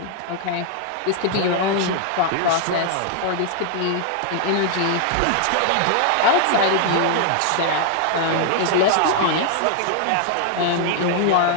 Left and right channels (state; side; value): different; both; correlation 0.00